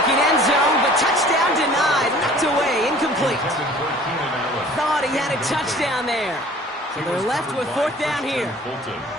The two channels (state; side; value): normal; both; correlation 0.49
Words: end zone, but touchdown denied. Knocked away, incomplete. Thought he had a touchdown there. So they're left with 4th down here.